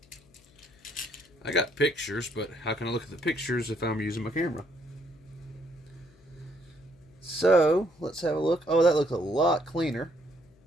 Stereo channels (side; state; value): left; noise; hum, 30 dB below the sound